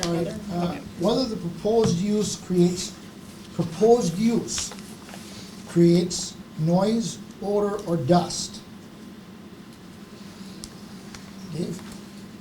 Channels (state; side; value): identical; both; correlation 1.00